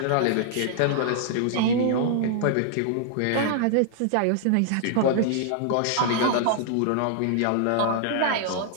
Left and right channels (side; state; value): both; different; correlation -0.01